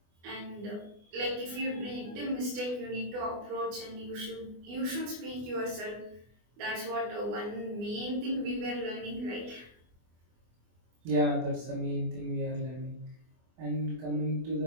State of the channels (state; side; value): late; left; 24 ms